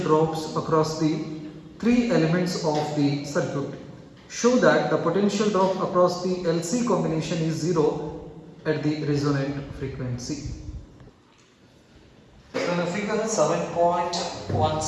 drops across the three elements of the circuit. Show that the potential drop across the LC combination is 0 at the resonant frequency. So in the figure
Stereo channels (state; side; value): identical; both; correlation 1.00